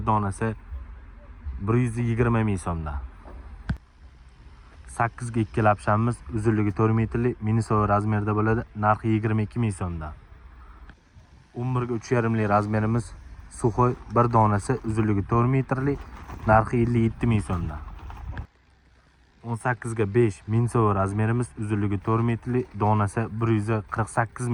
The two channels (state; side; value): identical; both; correlation 1.00